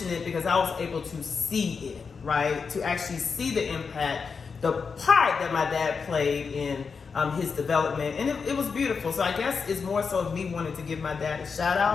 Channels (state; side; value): quieter; right; 5.4 dB